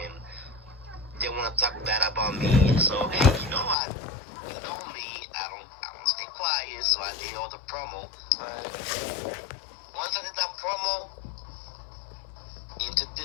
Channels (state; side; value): drops out; right; at 3.8 s